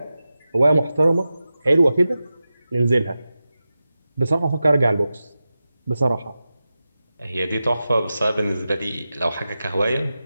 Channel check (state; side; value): inverted; both; correlation -0.93